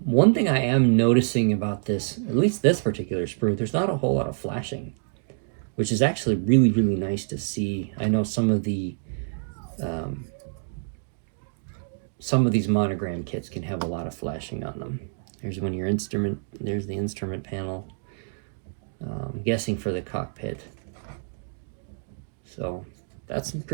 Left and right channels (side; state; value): left; silent; digital silence